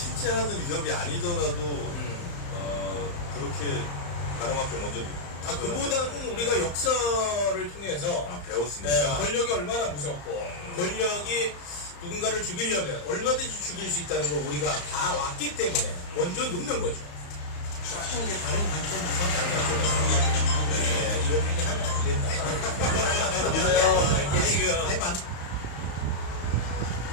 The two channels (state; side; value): late; right; 35 ms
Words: 하는 위협이 아니더라도 그렇게 바람 앞에 먼저 그보다는 우리가 역사를 통해서 배웠으니까 권력이 얼마나 무섭고 권력이 누군가를 죽이려면 얼마든지 죽일 수 있다는 걸 우리가 다 왔기 때문에 먼저 눕는 거죠. 조금 게 다른 관점에서 이런 얘기 하면 안 된다. 믿어요. 이게 지금